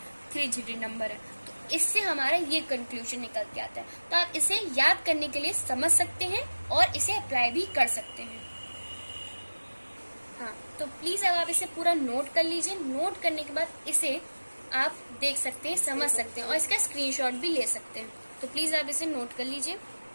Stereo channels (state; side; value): inverted; both; correlation -1.00